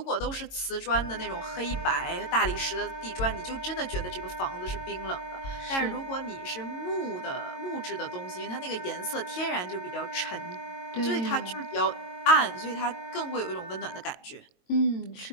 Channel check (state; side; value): late; right; 22 ms